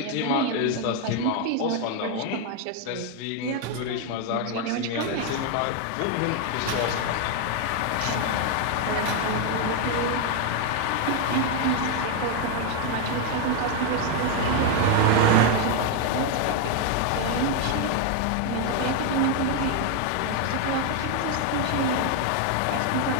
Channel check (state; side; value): different; both; correlation 0.01